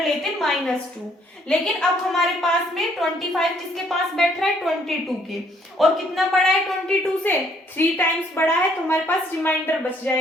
-2। लेकिन अब हमारे पास में 25 किसके पास बैठ रहा है 22 के, और कितना बड़ा है 22 से 3 टाइम्स बड़ा है, तो हमारे पास रिमाइंडर बच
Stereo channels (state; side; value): normal; both; correlation 0.65